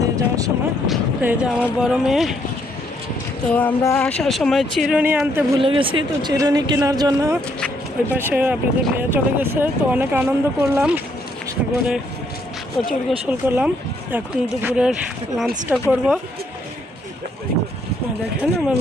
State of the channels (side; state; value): both; normal; correlation 0.71